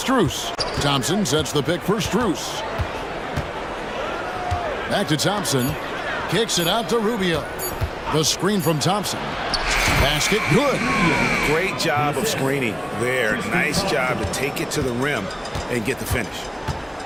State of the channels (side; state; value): both; identical; correlation 1.00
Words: Thompson sets the pick for Strus. Back to Thompson. Kicks it out to Rubio. The screen from Thompson. Basket good. Great job of screening there. Nice job to take it to the rim and get the finish.